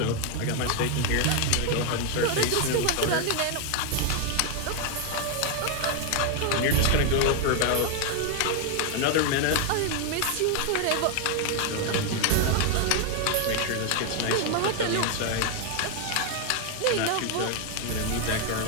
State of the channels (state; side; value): different; both; correlation 0.01